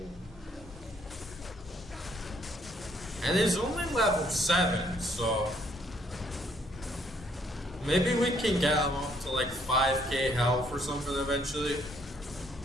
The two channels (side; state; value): both; normal; correlation 0.67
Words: And he's only level 7, so maybe we can get him up to like 5k health or something eventually.